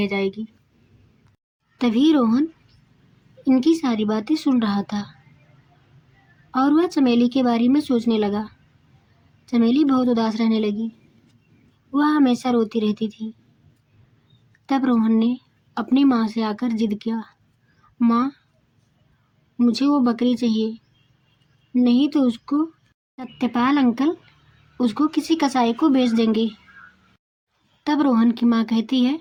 जाएगी। तभी रोहन इनकी सारी बातें सुन रहा था और वह चमेली के बारे में सोचने लगा। चमेली बहुत उदास रहने लगी। वह हमेशा रोती रहती थी। तब रोहन ने अपनी माँ से आकर जिद किया, माँ, मुझे वो बकरी चाहिए, नहीं तो उसको सत्यपाल अंकल उसको किसी कसाई को बेच देंगे। तब रोहन की माँ कहती है,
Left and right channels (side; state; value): both; identical; correlation 1.00